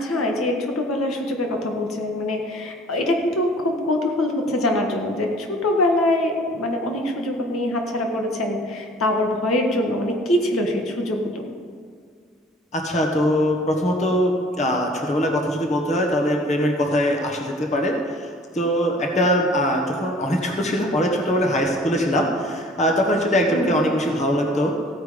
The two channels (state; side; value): normal; both; correlation 0.51